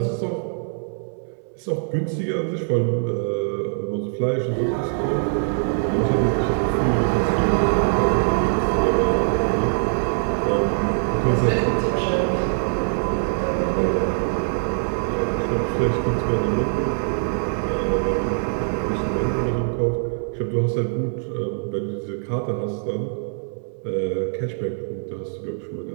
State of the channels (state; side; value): silent; left; 63 dB below the other